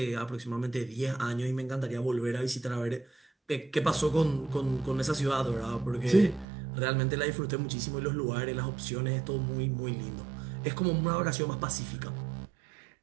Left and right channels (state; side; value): drops out; left; at 6.5 s